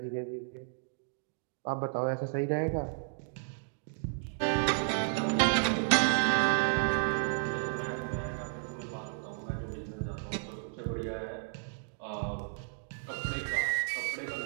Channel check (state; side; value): silent; left; digital silence